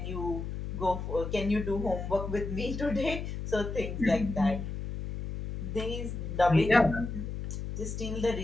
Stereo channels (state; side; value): noise; left; hum, 6 dB below the sound